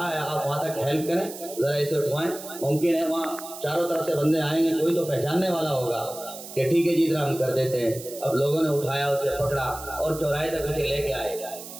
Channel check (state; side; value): noise; right; hiss, 13 dB below the sound